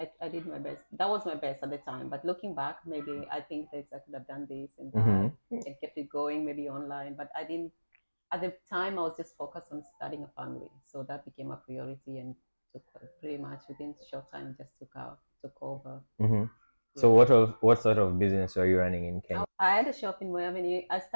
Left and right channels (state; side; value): inverted; both; correlation -1.00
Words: I did my best. That was my best at the time. But looking back, maybe I think that I could have done this and that and kept it going, maybe online. But I didn't. At the time, I was just focused on starting a family, so that became a priority, and took pretty much within a short time just took over. So what sort of business are you running in Kenya? I had a shop in Moy Avenue. I